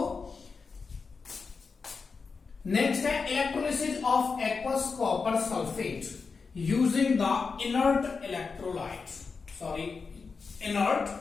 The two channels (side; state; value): right; quieter; 4.9 dB